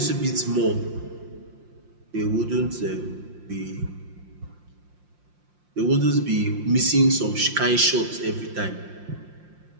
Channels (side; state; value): left; late; 5.7 ms